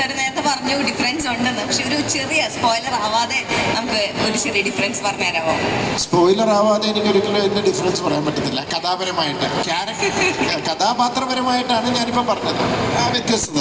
നേരത്തെ പറഞ്ഞു ഡിഫറൻസ് ഉണ്ടെന്ന്, പക്ഷെ ഒരു ചെറിയ സ്പോയിലർ ആവാതെ നമുക്ക് ഒരു ചെറിയ ഡിഫറൻസ് പറഞ്ഞു തരാമോ? സ്പോയിലർ ആവാതെ എനിക്കൊരിക്കലും ഇതിൻ്റെ ഡിഫറൻസ് പറയാൻ പറ്റത്തില്ല. കഥാപരമായിട്ട് കഥാപാത്രപരമായിട്ടാണ് ഞാനിപ്പോൾ പറഞ്ഞത് ആ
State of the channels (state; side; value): identical; both; correlation 1.00